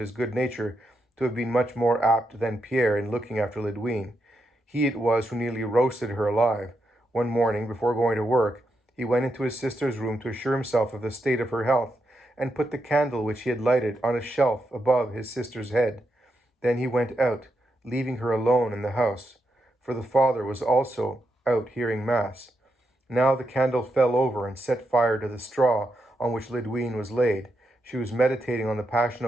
good nature, to have been much more apt than Pierre in looking after Lydwine. He it was who nearly roasted her alive. One morning, before going to work, he went into his sister's room to assure himself of the state of her health, and put the candle which he had lighted on a shelf above his sister's head. Then he went out, leaving her alone in the house, for the father was also out hearing mass. Now the candle fell over and set fire to the straw on which Lydwine was laid. She was meditating on the Passion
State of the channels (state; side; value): normal; both; correlation 0.84